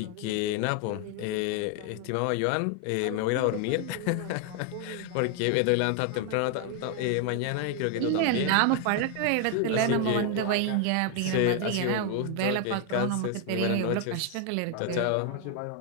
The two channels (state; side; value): different; both; correlation 0.01